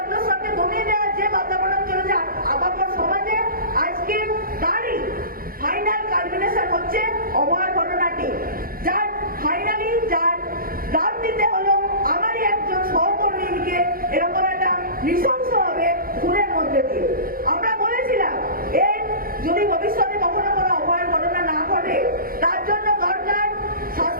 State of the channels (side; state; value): left; late; 0.42 ms